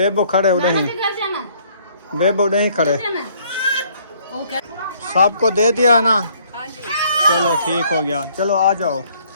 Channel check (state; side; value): inverted; both; correlation -0.63